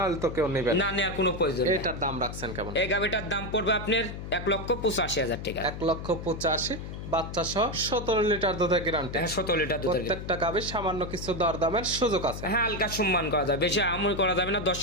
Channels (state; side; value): noise; left; hum, 8 dB below the sound